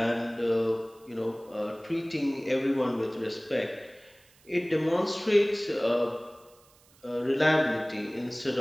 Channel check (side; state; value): right; noise; hiss, 29 dB below the sound